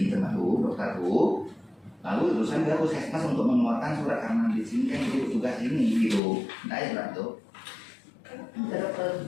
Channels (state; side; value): drops out; right; at 6.2 s